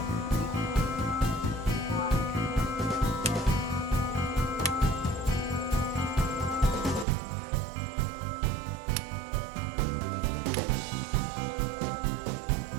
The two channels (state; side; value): drops out; left; at 7.1 s